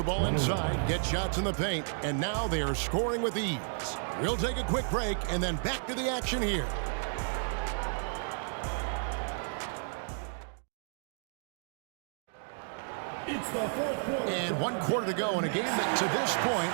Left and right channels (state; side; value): silent; left; digital silence